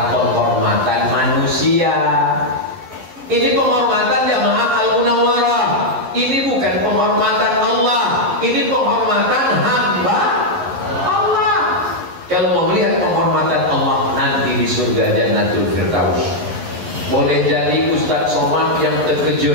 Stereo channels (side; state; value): left; late; 11 ms